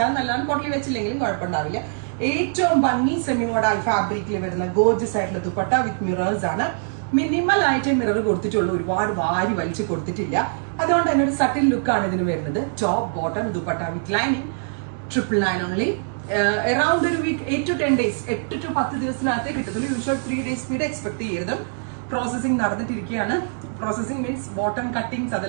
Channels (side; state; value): left; silent; digital silence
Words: നല്ലതാണ്, പോട്ട്ലി വെച്ചില്ലെങ്കിലും കുഴപ്പമുണ്ടാവില്ല. ഏറ്റവും ഭംഗി സെമി മോഡൽ ഫാബ്രിക്കിൽ വരുന്ന ഗോർജസ് ആയിട്ടുള്ള ദുപ്പട്ട വിത്ത് മിറേഴ്സ് ആണ്. മിനിമൽ ആയിട്ട് മിറർ കൊടുത്തിട്ടുള്ളൂ, ഒരുപാട് വാരി വലിച്ച് കൊടുത്തിട്ടില്ല. അതുകൊണ്ട് തന്നെ ഒരു സട്ടിൽ ലുക്കാണ് ഇതിന് വരുന്നത്. Top bottom dupatta with lining 999 only. Around ഒരു വീക്ക് 8 to 10 days, 8 to 10 ദിവസത്തിനകത്തേ കിട്ടത്തുള്ളൂ. യൂഷ്വൽ 3 days സ്പീഡ് എക്സ്പെക്ട് ചെയ്യരുത്. പ്രോസസിങ് നടന്നിട്ടിരിക്കുകയാണ്. പ്രോസസിങ് മീൻസ് ബോട്ടം കട്ടിങ്സ്